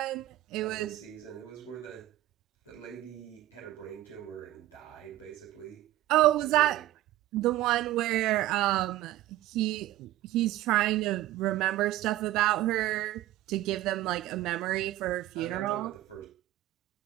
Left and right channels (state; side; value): quieter; left; 15.2 dB